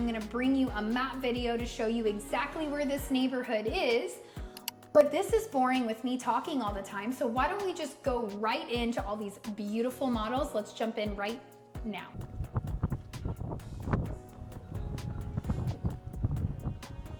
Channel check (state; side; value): identical; both; correlation 1.00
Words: gonna bring you a map video to show you exactly where this neighborhood is. But this is boring with me talking all the time, so why don't we just go right into all these beautiful models? Let's jump in right now.